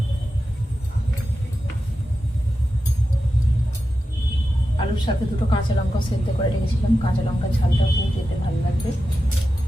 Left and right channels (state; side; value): normal; both; correlation 0.91